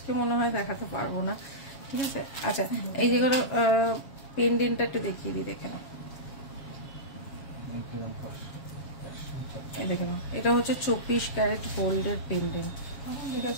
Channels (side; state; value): right; late; 7.3 ms